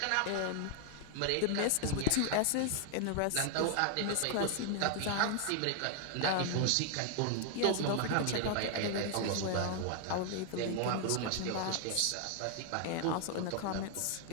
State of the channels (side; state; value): both; different; correlation 0.00